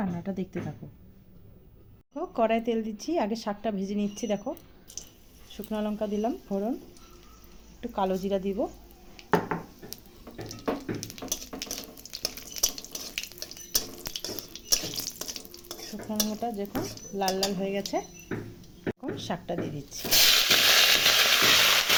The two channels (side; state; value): both; identical; correlation 1.00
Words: দেখতে থাকো। কড়াই তেল দিচ্ছি, আগে শাকটা ভেজে নিচ্ছি। দেখো শুকনো লঙ্কা দিলাম ফোড়ন, একটু কালো জিরা দিব। শুকনো লঙ্কাটা যখন লাল লাল হয়ে গেছে এখন শাকটা দিয়ে দিচ্ছি।